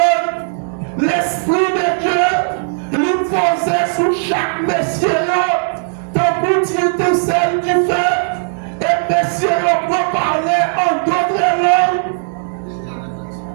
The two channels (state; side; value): silent; left; digital silence